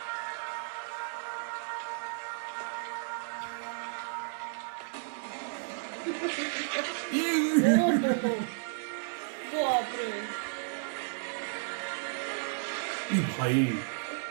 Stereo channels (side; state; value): left; silent; digital silence